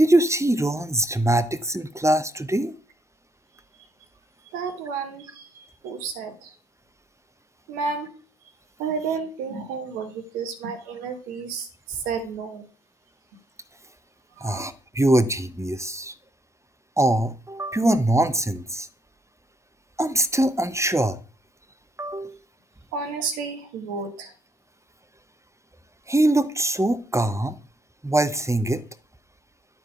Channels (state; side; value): normal; both; correlation 0.74